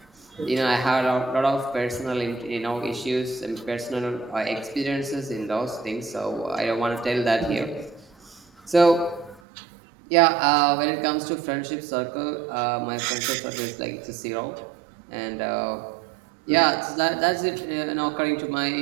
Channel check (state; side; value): drops out; left; at 9.4 s